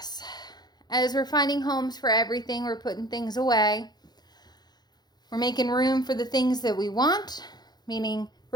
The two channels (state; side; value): late; right; 0.20 ms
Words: As we're finding homes for everything, we're putting things away. We're making room for the things that we want, meaning